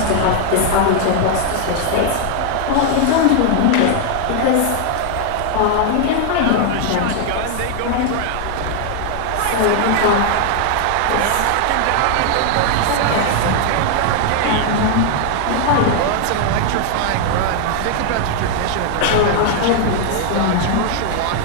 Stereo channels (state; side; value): different; both; correlation 0.00